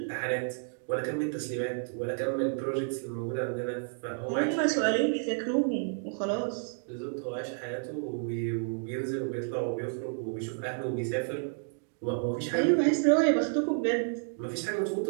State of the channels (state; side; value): silent; left; digital silence